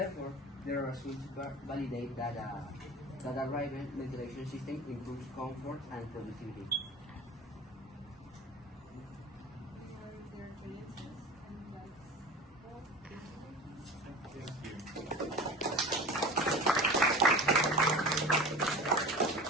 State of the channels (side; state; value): both; normal; correlation 0.35